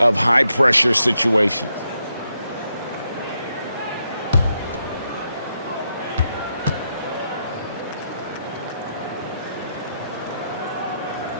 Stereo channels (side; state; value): both; inverted; correlation -0.81